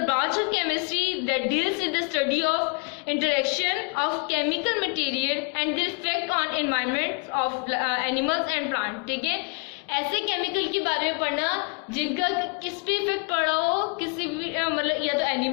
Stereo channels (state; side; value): quieter; right; 35.6 dB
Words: branch of chemistry that deals with the study of interaction of chemical material and the effect on environment of animals and plant. ठीक है, ऐसे chemical के बारे में पढ़ना जिनका किस पे इफेक्ट पड़ा हो, किसी भी मतलब या तो